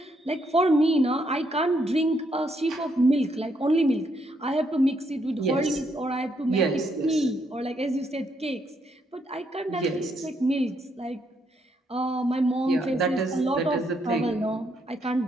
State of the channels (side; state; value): both; normal; correlation 0.75